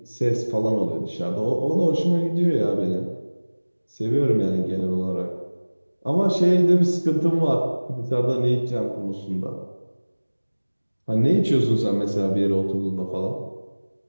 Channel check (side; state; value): both; inverted; correlation -1.00